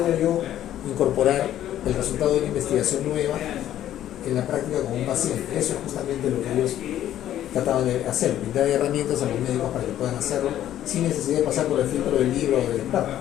yo incorporar el resultado de una investigación nueva en la práctica con un paciente? Eso es justamente lo que ellos trataban de hacer, brindar herramientas a los médicos para que puedan hacerlo sin necesidad de pasar por el filtro del libro o del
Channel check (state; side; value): quieter; right; 11.9 dB